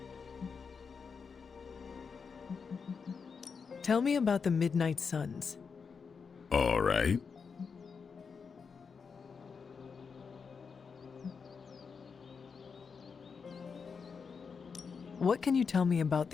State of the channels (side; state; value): right; quieter; 5.6 dB